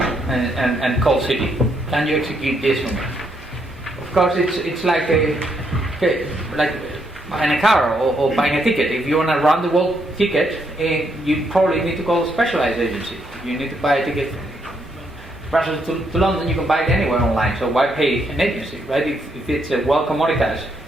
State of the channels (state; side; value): normal; both; correlation 0.75